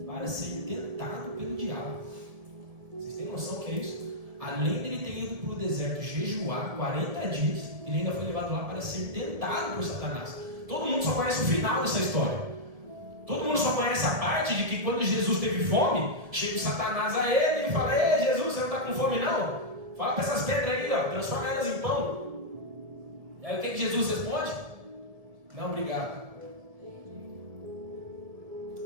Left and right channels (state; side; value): late; left; 1.7 ms